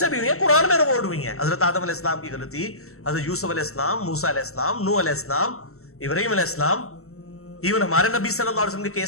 بھی ہوئی ہیں، قرآن میں ریکارڈ ہوئی ہیں۔ حضرت آدم علیہ السلام کی غلطی، حضرت یوسف علیہ السلام، موسیٰ علیہ السلام، نوح علیہ السلام، ابراہیم علیہ السلام، ایون ہمارے نبی صلی اللہ علیہ وسلم کے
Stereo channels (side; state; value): right; late; 0.63 ms